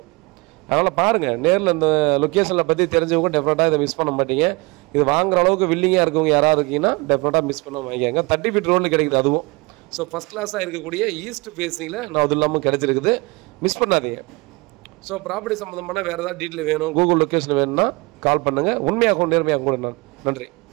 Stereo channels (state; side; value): quieter; left; 26.0 dB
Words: அதனால் பாருங்கள், நேரில் இந்த லொக்கேஷனில் பற்றி தெரிஞ்சவங்க டெஃபினட்டாக இதை மிஸ் பண்ண மாட்டீங்க. இது வாங்குற அளவுக்கு வில்லிங்காக இருக்கவங்க யாராவது இருக்கீங்கன்னா டெஃபினட்டாக மிஸ் பண்ண வாங்கிக்காங்க. 30 ஃபீட் ரோடில் கிடைக்குது அதுவும். ஃபஸ்ட் கிளாஸாக இருக்கக்கூடிய ஈஸ்ட் ஃபேஸிங்கில் நான் அது இல்லாமல் கிடச்சிருக்குது. மிஸ் பண்ணாதீங்க. ப்ராப்பர்ட்டி சம்மந்தமான வேறு ஏதாவது டீட்டெயில் வேணும், கூகுள் லொக்கேஷன் வேணும்னா கால் பண்ணுங்கள். உண்மையாகவும் நேர்மையாகவும் கூட நன்றி.